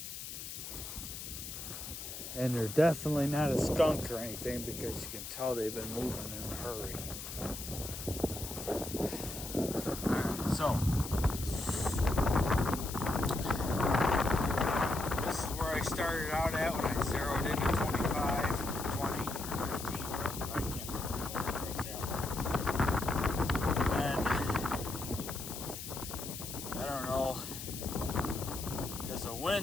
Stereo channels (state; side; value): noise; left; hiss, 8 dB below the sound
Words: And they're definitely not a skunk or anything, because you can tell they've been moving in a hurry. Alright, so this is where I started out at when I zeroed into 25, or 20, or 15, or I can't remember now where I was at. And I don't know, because the